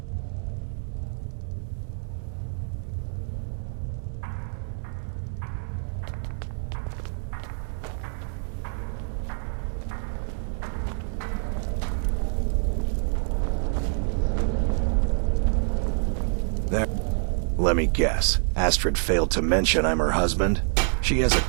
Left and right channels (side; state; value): left; silent; digital silence